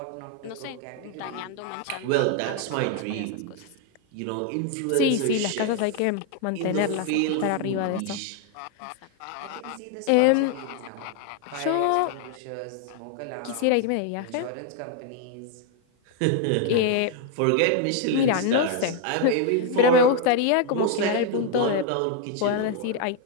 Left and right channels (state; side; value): different; both; correlation 0.01